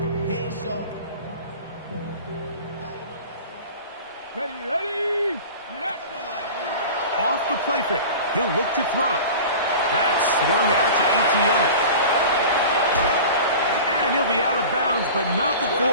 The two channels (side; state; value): both; inverted; correlation -0.37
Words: Ready. Off the play fake. He'll look to throw. That's swung out to ETN. And he'll be out of bounds, but not